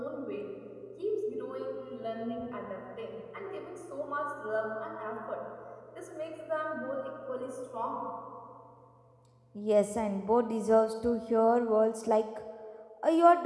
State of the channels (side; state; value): both; identical; correlation 1.00